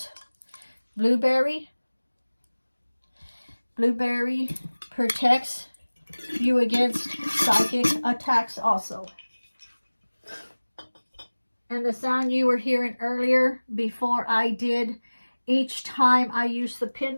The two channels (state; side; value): inverted; both; correlation -1.00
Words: blueberry. Blueberry protects you against psychic attacks also. And the sound you were hearing earlier before I did, each time I used the